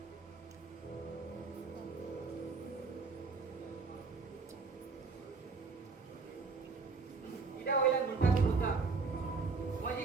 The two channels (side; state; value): left; quieter; 4.4 dB